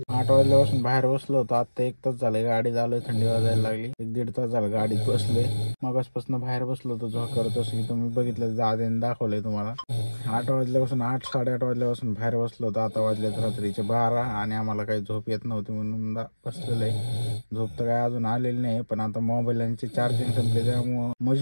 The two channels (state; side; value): inverted; both; correlation -1.00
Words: 8 वाजल्यापासून बाहेर बसलो होतो. आता 1 तास झाले गाडी झालोय, थंडी वाजायला लागली. 1-1.5 तास झालं गाडीत बसलोय. मगासपासून बाहेर बसलो होतो झोप करत, असं की तुम्ही बघितलं दादाने दाखवलंय तुम्हाला. 8 वाजल्यापासून 8-8:30 वाजल्यापासून बाहेर बसलो होतो. आता वाजल्यात रात्रीचे 12 आणि आम्हाला काही झोप येत नव्हती म्हणून बसलेलं आहे. झोप तर काय अजून आलेली नाही, पण आता मोबाईलचे चार्जिंग संपले त्यामुळं